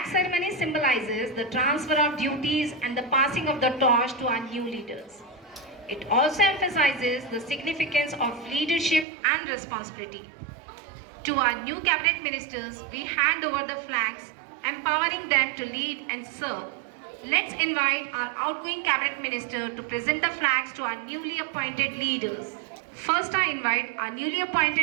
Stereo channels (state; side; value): drops out; left; at 9.1 s